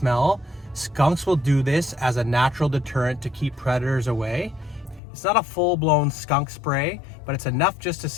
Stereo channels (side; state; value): right; drops out; at 5.0 s